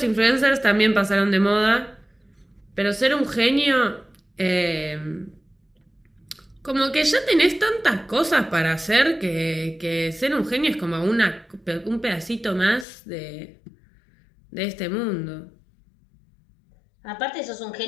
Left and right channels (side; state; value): right; drops out; at 12.9 s